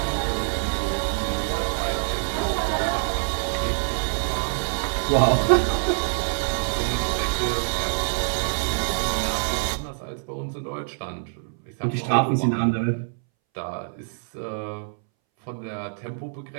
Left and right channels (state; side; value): silent; left; 62 dB below the other